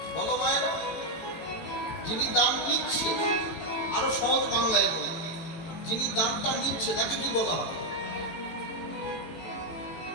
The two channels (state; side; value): late; right; 18 ms